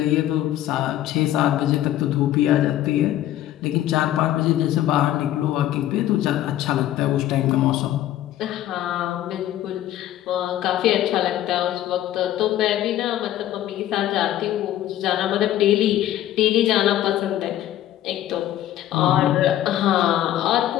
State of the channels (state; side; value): quieter; right; 13.0 dB